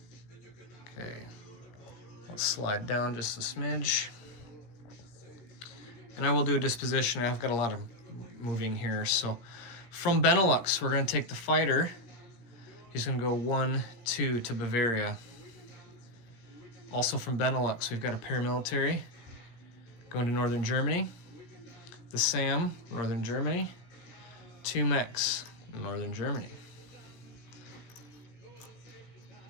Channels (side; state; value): right; late; 17 ms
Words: Okay, let's slide down just a smidge. And I will do a disposition. I've got a lot of moving here. So from Benelux, we're gonna take the fighter. He's gonna go 1, 2 to Bavaria. Also from Benelux, we've got a paramilitary going to northern Germany. The SAM, northern Germany. 2 mechs, northern Germany.